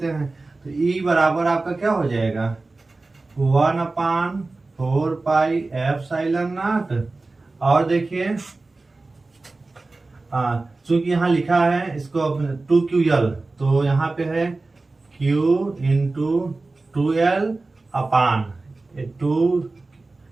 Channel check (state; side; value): quieter; left; 3.4 dB